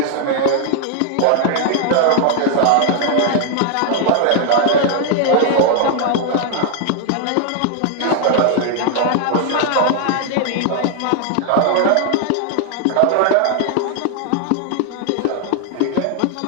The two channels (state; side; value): different; both; correlation 0.00